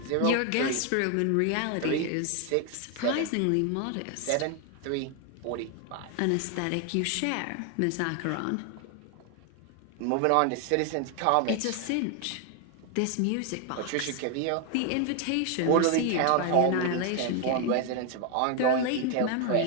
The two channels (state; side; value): different; both; correlation 0.01